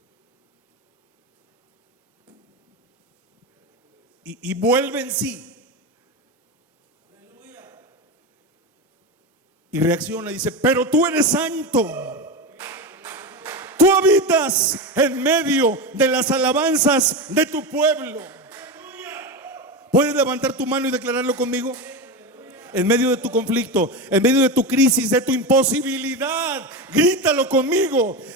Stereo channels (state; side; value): normal; both; correlation 0.19